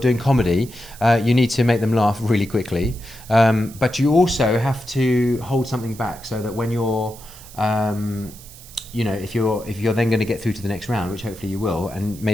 comedy, you need to make them laugh really quickly, but you also have to hold something back, so that when you're if you're then going to get through to the next round, which hopefully you will, and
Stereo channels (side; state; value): right; noise; hiss, 19 dB below the sound